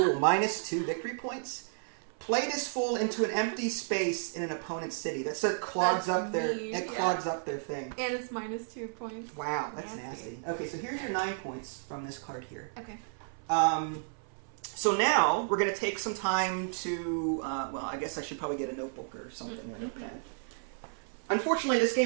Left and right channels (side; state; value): left; silent; 56 dB below the other